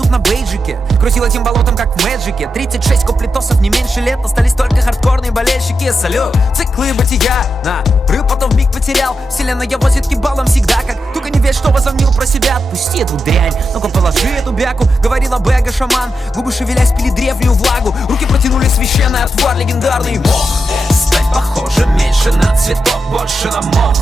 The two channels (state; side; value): normal; both; correlation 0.87